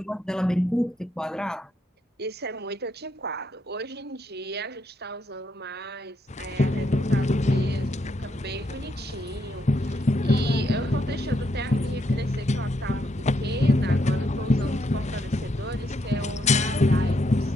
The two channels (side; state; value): both; normal; correlation 0.77